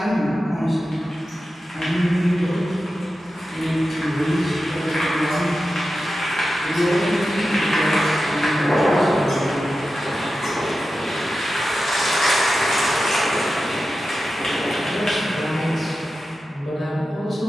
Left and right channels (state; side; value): normal; both; correlation 0.92